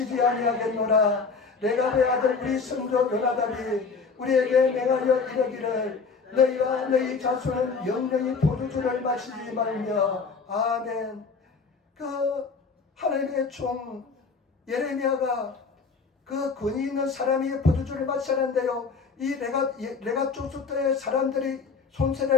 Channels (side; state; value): right; quieter; 4.9 dB